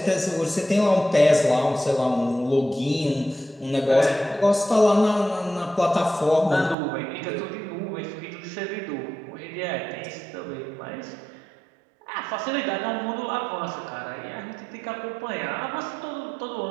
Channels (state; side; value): drops out; left; at 6.8 s